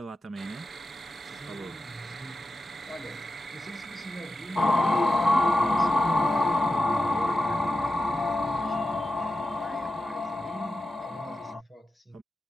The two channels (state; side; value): normal; both; correlation 0.90